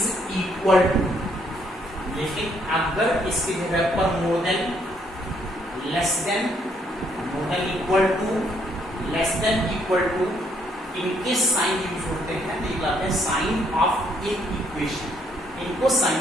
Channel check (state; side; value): normal; both; correlation 0.70